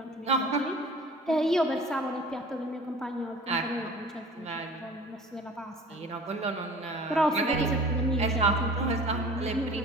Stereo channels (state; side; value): normal; both; correlation 0.43